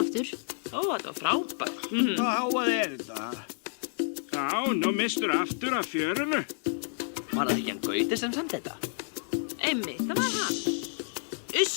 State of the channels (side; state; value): right; silent; digital silence